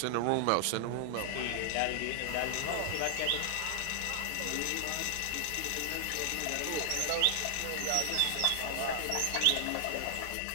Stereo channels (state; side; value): different; both; correlation 0.00